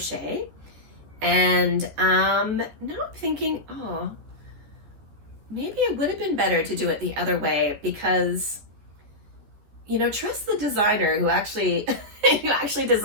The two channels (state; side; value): late; left; 14 ms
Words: And now I'm thinking, oh, maybe it would have been better to do it the other way, because, you know, trust the designer who actually who actually